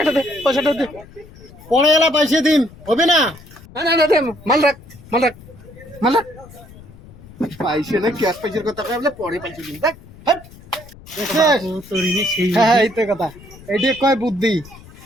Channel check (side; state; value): left; noise; rumble, 20 dB below the sound